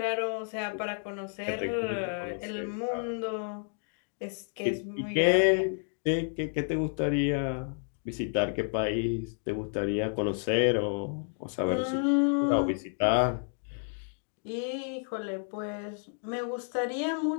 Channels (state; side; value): silent; right; 57 dB below the other